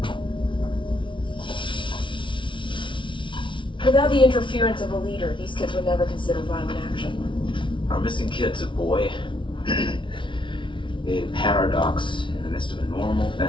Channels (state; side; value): late; right; 0.24 ms